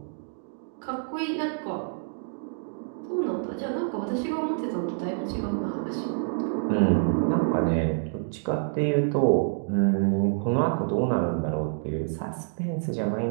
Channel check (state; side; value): silent; left; digital silence